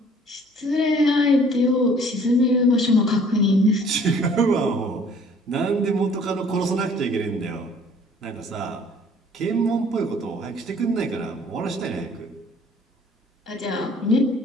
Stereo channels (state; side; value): normal; both; correlation 0.55